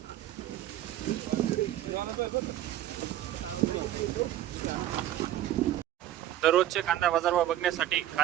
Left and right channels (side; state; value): left; quieter; 12.9 dB